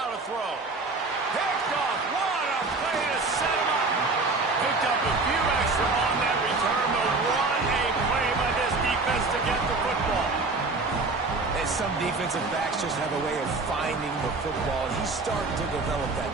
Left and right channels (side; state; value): left; quieter; 3.6 dB